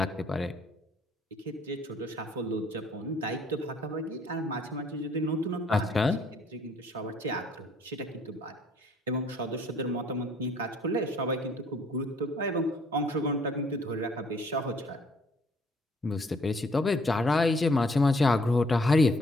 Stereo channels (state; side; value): normal; both; correlation 0.62